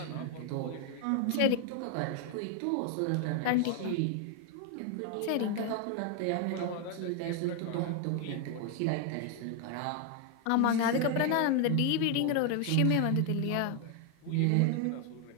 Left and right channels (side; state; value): both; different; correlation 0.00